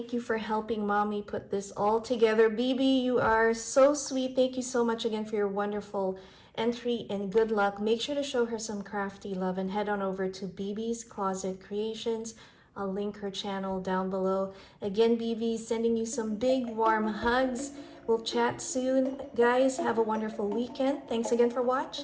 you for helping mommy put this all together. Bibi, you are so sweet. Thank you so much again for your wonderful entry, and good luck. Make sure to show her some crafty love and head on over to Bibi's Closet Creations. I'll link her channel down below. Again, Bibi, sending you some big warm hugs. We'll chat soon. Guys, have a wonderful weekend. Thanks again for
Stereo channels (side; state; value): both; identical; correlation 1.00